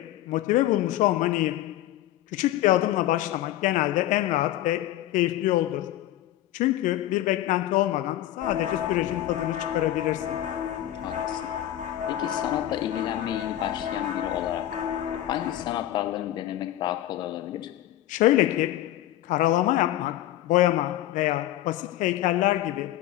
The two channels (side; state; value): right; quieter; 13.8 dB